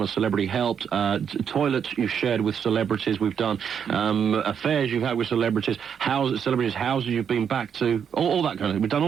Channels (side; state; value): left; quieter; 7.7 dB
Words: a celebrity helped. Toilets you've shared with celebrities, we've done. Affairs you've had with celebrities, celebrities' houses you've been back to, all that kind of thing. We've done